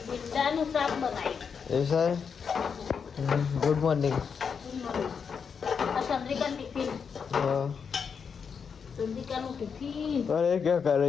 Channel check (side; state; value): right; quieter; 6.3 dB